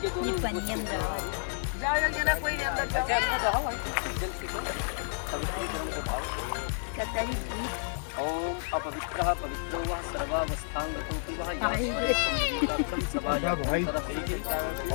दोनों ओम अपवित्रः पवित्रो वः सर्वावस्थांगतोऽपि वः यातं सभायां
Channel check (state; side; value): silent; right; digital silence